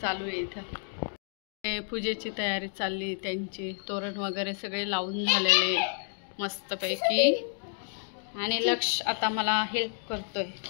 चालू आहे. इथं पूजेची तयारी चालली, त्यांची तोरण वगैरे सगळे लावून झालेले मस्तपैकी. आणि लक्ष आता मला हेल्प करतोय.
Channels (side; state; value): right; silent; 58 dB below the other